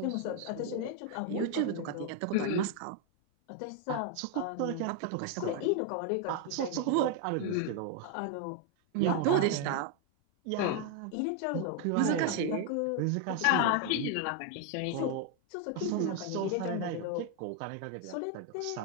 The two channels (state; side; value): different; both; correlation 0.01